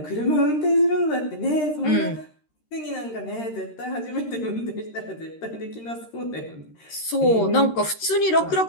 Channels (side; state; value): right; late; 13 ms